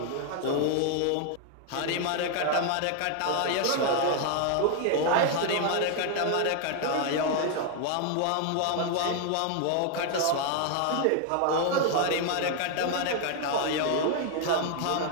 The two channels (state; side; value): different; both; correlation 0.00